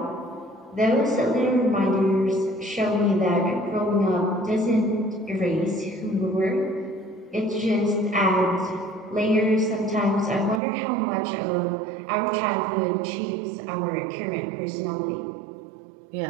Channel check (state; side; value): drops out; left; at 10.6 s